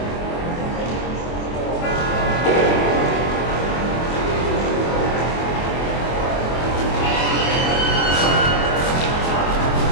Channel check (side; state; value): right; late; 24 ms